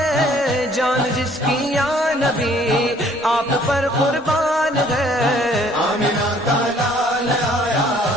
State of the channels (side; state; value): both; normal; correlation 0.59